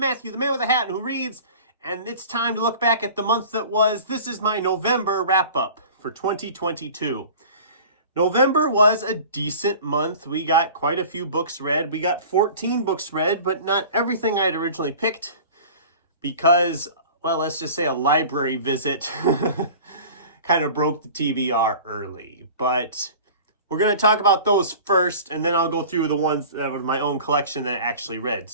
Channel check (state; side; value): inverted; both; correlation -0.41